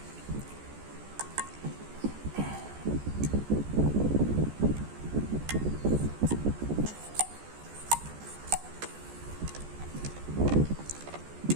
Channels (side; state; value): left; late; 14 ms